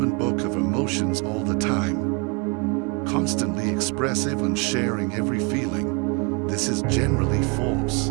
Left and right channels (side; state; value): left; quieter; 32.4 dB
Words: book of emotions all the time, constantly expressive and sharing every feeling. This is generally false.